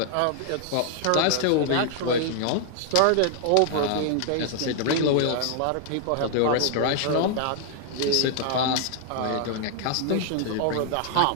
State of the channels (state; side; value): different; both; correlation -0.01